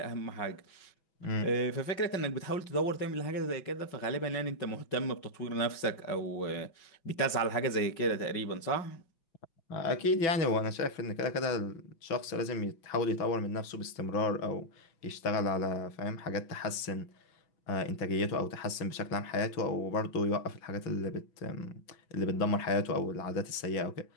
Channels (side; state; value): right; late; 6.1 ms